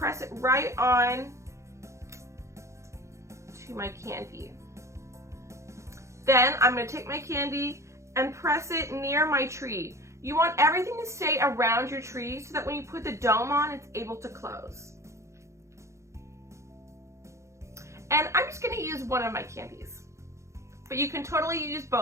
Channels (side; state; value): left; late; 0.14 ms